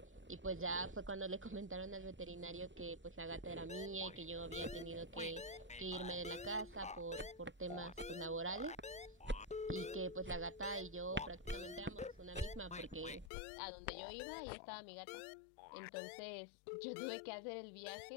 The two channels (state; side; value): drops out; right; at 13.3 s